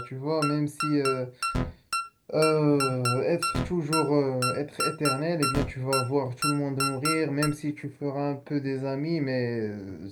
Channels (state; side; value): identical; both; correlation 1.00